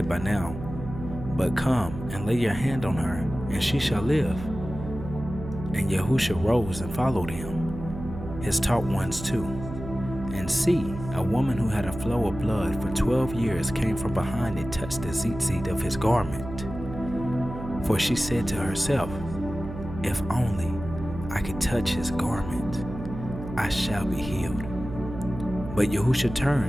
by now, but come and lay your hand on her, and she shall live. And YaHUsHa rose and followed him, his taught ones too. And see, a woman who had a flow of blood for 12 years came from behind and touched the tzitzit of his garment. For she said to herself, if only I could touch his garment, I shall be healed. But YaHUsHa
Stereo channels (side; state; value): right; noise; hum, 10 dB below the sound